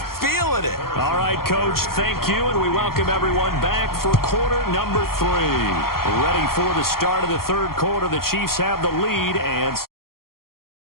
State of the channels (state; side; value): late; right; 0.93 ms